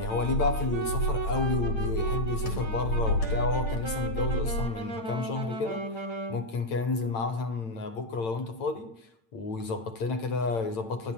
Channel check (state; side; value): late; right; 8.9 ms